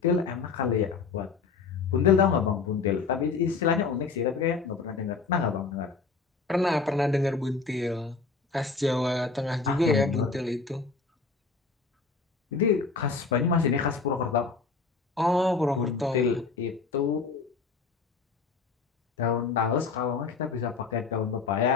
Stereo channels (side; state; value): right; quieter; 4.7 dB